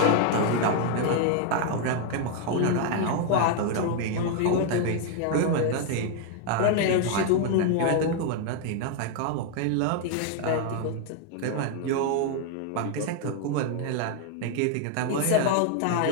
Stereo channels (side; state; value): both; different; correlation 0.00